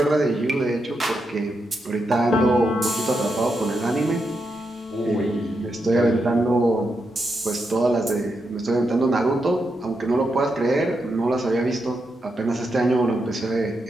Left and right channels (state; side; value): normal; both; correlation 0.84